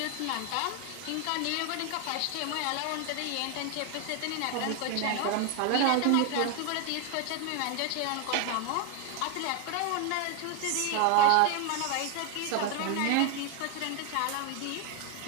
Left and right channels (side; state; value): both; different; correlation 0.01